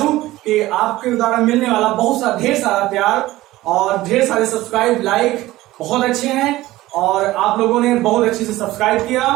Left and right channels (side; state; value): left; quieter; 17.1 dB